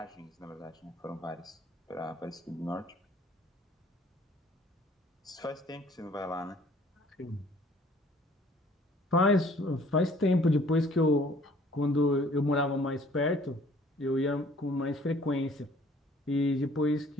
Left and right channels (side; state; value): both; normal; correlation 0.56